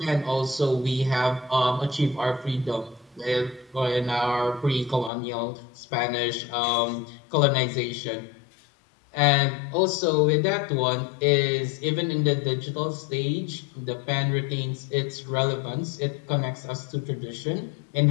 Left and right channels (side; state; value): right; drops out; at 5.1 s